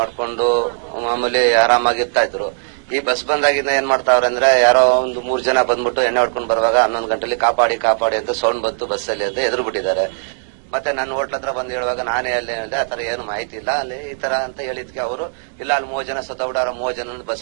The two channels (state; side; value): silent; left; digital silence